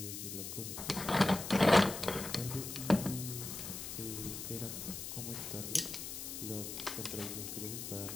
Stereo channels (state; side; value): noise; left; hiss, 7 dB below the sound